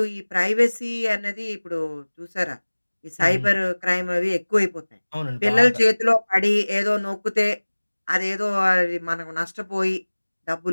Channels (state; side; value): inverted; both; correlation -1.00